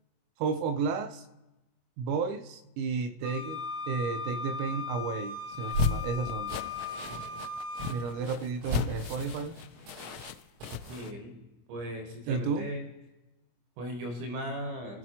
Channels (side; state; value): left; late; 25 ms